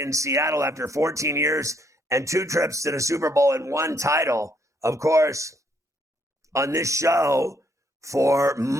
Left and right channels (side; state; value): both; normal; correlation 0.70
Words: Seattle after 14 years and 2 trips to the Super Bowl and 1 title. Of course, on this show for